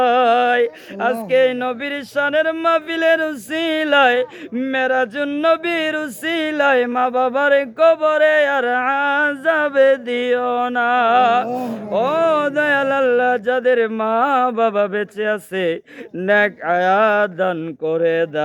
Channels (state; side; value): identical; both; correlation 1.00